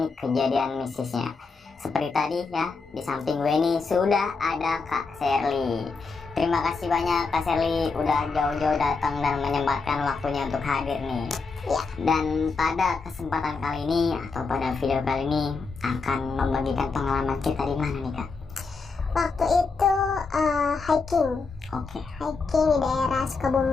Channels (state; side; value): quieter; right; 4.4 dB